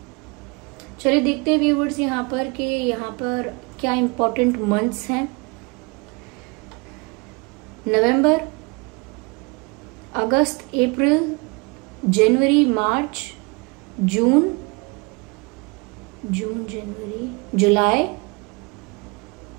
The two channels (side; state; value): left; quieter; 29.1 dB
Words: चलिए देखते हैं व्यूवर्स यहाँ पर कि यहाँ पर क्या इंपॉर्टेंट मंथ्स हैं। नवंबर, अगस्त, अप्रैल, जनवरी, मार्च, जून, जनवरी, जुलाई,